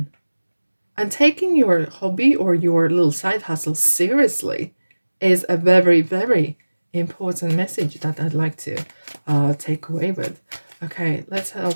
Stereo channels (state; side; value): inverted; both; correlation -1.00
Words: and taking your hobby or your little side hustle seriously is a very important message that I'd like to take away with. Okay, let's